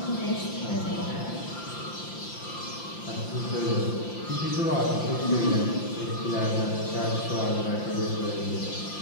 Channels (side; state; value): right; late; 5.8 ms